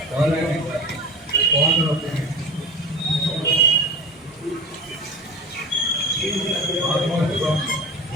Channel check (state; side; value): normal; both; correlation 0.31